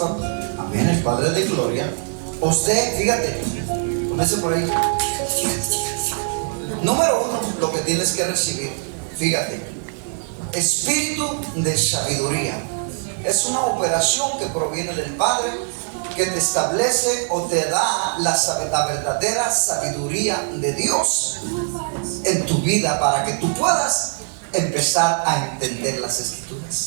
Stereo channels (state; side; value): silent; left; 55 dB below the other